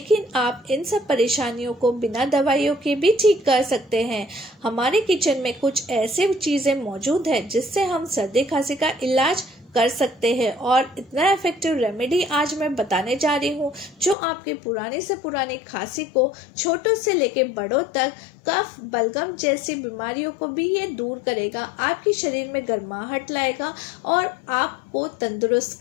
आप इन सब परेशानियों को बिना दवाइयों के भी ठीक कर सकते हैं। हमारे किचन में कुछ ऐसे चीज़ें मौजूद हैं जिससे हम सर्दी खांसी का इलाज कर सकते हैं और इतना इफेक्टिव रेमेडी आज मैं बताने जा रही हूँ जो आपके पुराने से पुरानी खांसी को छोटों से लेके बड़ों तक, कफ, बलगम जैसी बीमारियों को भी ये दूर करेगा, आपके शरीर में गर्माहट लाएगा और आपको तंदुरुस्त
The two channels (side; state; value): right; drops out; at 14.2 s